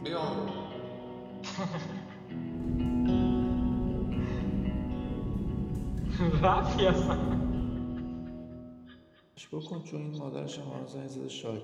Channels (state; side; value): identical; both; correlation 1.00